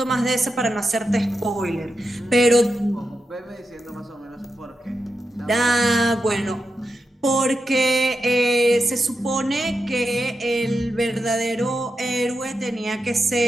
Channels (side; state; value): both; normal; correlation 0.88